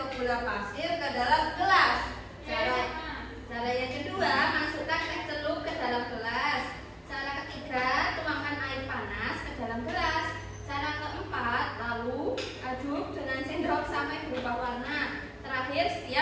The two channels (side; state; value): both; identical; correlation 1.00